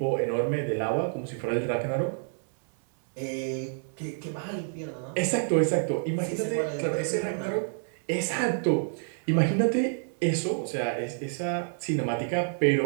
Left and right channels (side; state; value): left; silent; digital silence